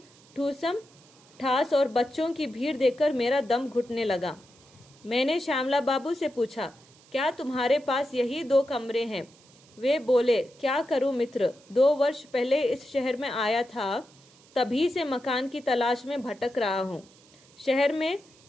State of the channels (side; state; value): right; noise; hiss, 27 dB below the sound